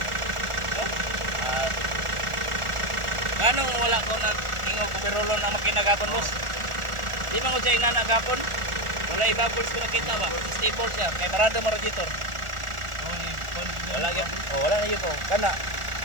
At ganong wala ko na ingog ko pirolon na makinagapon boss. Di man ko siya inanagapon. Wala i-bubbles ko nakita ba. Stable siya. Kaya parado mo radiator. Wala yun. Wala na yun po. Kana.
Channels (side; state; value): left; late; 1.4 ms